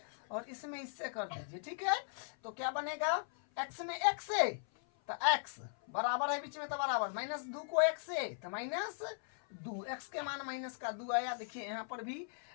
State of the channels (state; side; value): silent; right; 52 dB below the other